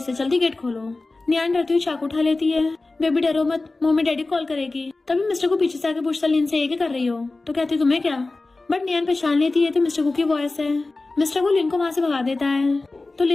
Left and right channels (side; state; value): right; quieter; 3.3 dB